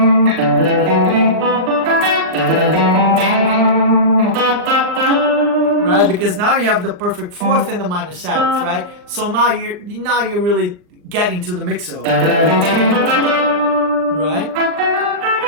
right, because now you have the perfect fourth and the minor seventh, right? So now you're really getting to the mixo, right?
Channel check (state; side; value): late; left; 39 ms